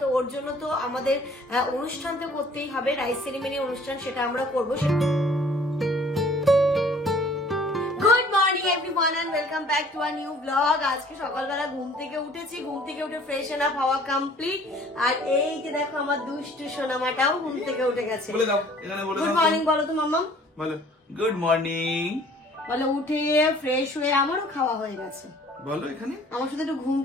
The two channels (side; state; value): both; normal; correlation 0.54